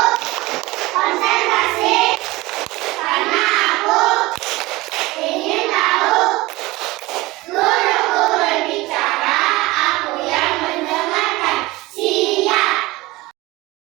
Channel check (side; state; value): left; quieter; 20.5 dB